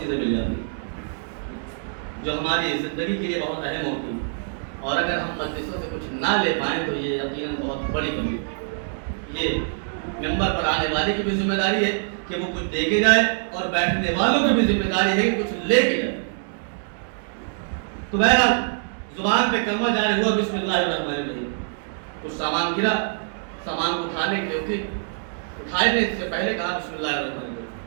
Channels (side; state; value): left; silent; digital silence